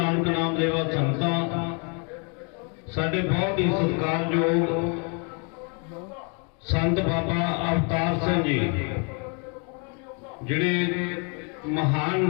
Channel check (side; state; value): right; quieter; 36.6 dB